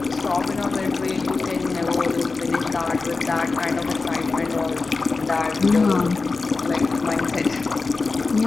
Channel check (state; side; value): quieter; right; 4.0 dB